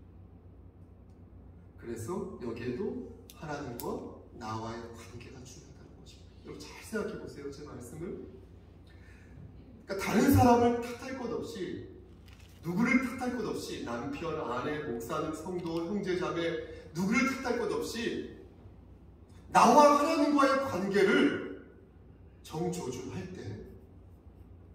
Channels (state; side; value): identical; both; correlation 1.00